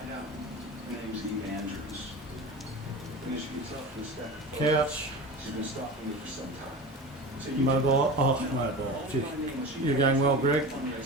Couch, mobile, mobile, gee, you're going well, Greg.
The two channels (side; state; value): both; normal; correlation 0.31